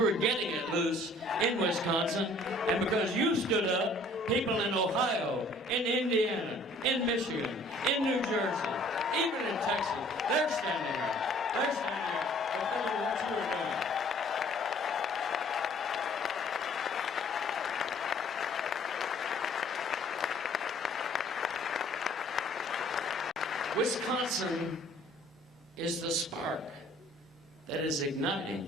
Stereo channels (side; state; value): both; normal; correlation 0.56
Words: were getting it loose in Wisconsin, and because you stood up, people in Ohio, in Indiana, in Michigan, in New Jersey, even in Texas, they're standing up. They're standing up. I'll tell you what you were doing. Wisconsin is the spark that is